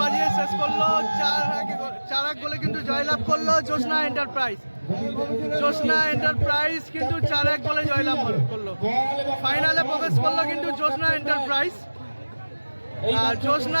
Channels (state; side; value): inverted; both; correlation -1.00